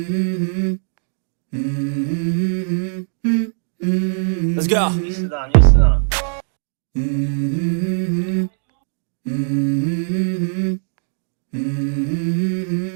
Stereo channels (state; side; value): silent; left; digital silence